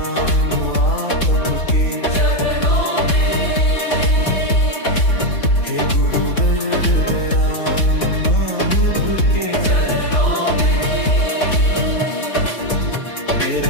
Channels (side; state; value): right; late; 3.9 ms